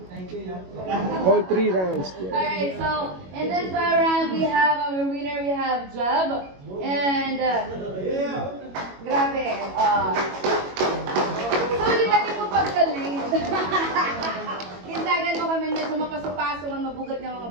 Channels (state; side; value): late; left; 22 ms